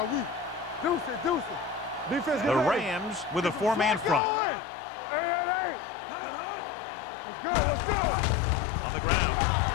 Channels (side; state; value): right; drops out; at 4.2 s